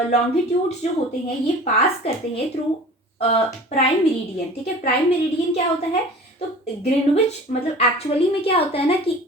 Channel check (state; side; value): normal; both; correlation 0.42